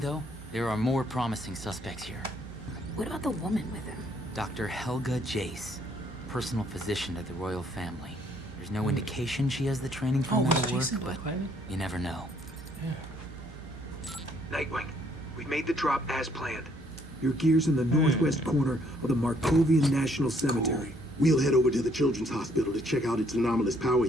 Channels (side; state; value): both; normal; correlation 0.66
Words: there are more promising suspects here. What about the woman with him? Dr. Helga Jace, personal physician to the royal family. There's no indication she has the training for metal work, but you never know. Nightwing, we made the drop as planned. Your gear's in the northwest corner of the Markovian National Cemetery. We'll head over to the Children's Hospital to check out its anomalous power